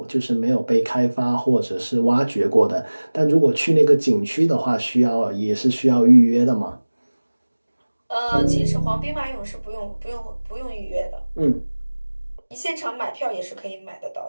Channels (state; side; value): inverted; both; correlation -1.00